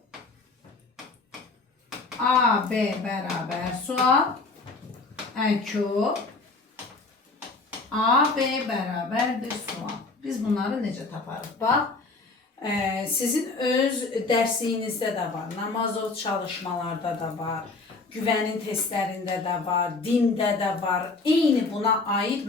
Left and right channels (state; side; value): quieter; right; 3.8 dB